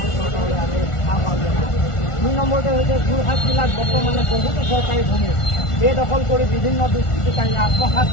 চৰকাৰলৈ আমি আহ্বান জনাইছোঁ। 2 নম্বৰতে হৈছে যোৰহাট জিলাত বৰ্তমানে বহুতো চৰকাৰী ভূমি বেদখল কৰি বিভিন্ন দুষ্কৃতিকাৰীয়ে আত্মসাৎ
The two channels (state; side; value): late; right; 1.4 ms